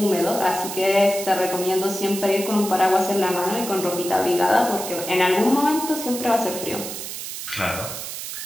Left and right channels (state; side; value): noise; right; hiss, 8 dB below the sound